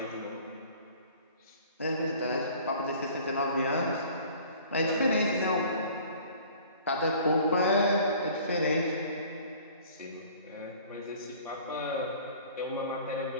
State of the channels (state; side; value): inverted; both; correlation -0.49